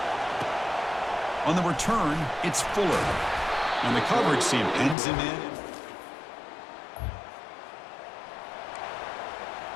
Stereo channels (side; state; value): right; drops out; at 5.0 s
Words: On the return, it's Fuller. And the coverage team pins him in.